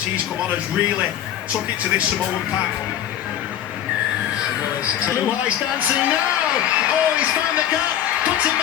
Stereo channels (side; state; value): right; quieter; 11.0 dB